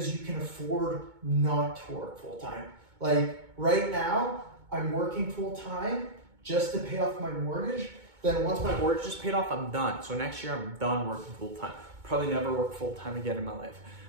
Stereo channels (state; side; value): late; left; 2.2 ms